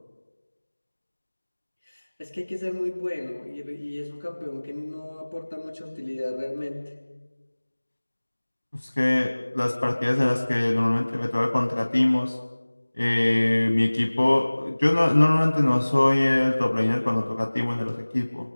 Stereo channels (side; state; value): both; inverted; correlation -1.00